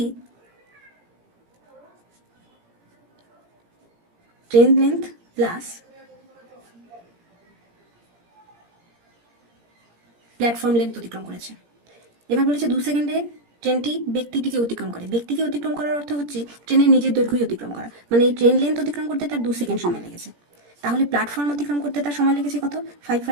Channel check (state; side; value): late; left; 17 ms